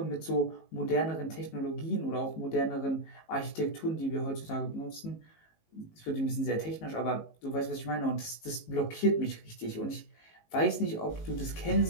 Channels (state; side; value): late; right; 19 ms